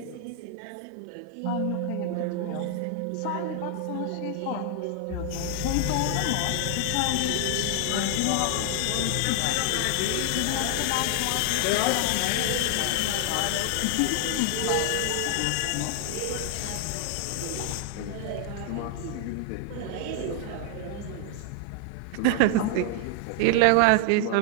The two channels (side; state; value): both; different; correlation 0.00